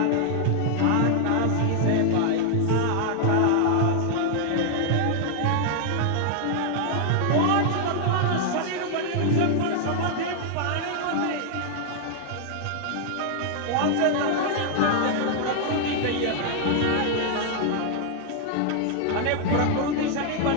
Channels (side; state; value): both; different; correlation 0.00